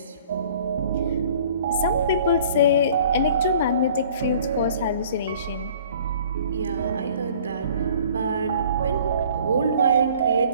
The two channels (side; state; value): both; inverted; correlation -0.52